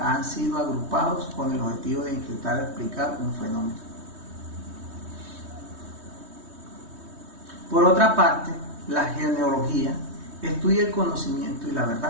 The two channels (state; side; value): late; left; 3.2 ms